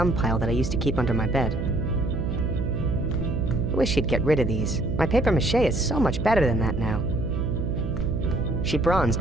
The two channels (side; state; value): right; noise; hum, 2 dB below the sound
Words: pile that I used to keep under my bed. I wish she'd get rid of these. My paper mache is so much better than that now. She bronzed